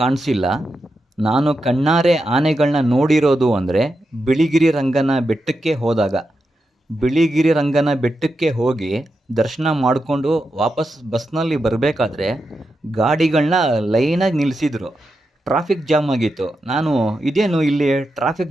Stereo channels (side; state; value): both; normal; correlation 0.87